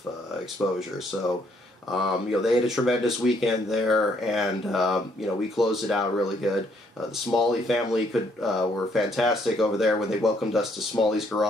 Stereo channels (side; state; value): both; normal; correlation 0.69